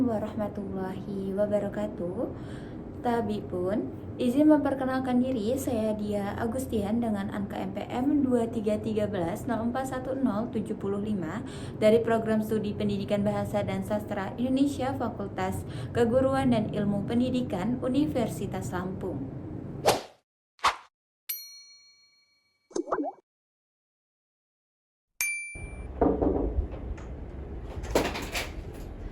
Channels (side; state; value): both; identical; correlation 1.00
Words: warahmatullahi wabarakatuh. Tabi pun, izin memperkenalkan diri, saya Dia Agustian dengan angka MPM 2313041075 dari Program Studi Pendidikan Bahasa dan Sastra Indonesia Fakultas Keguruan dan Ilmu Pendidikan Universitas Lampung.